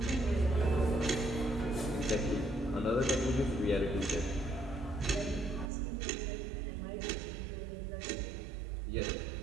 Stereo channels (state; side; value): drops out; left; at 5.7 s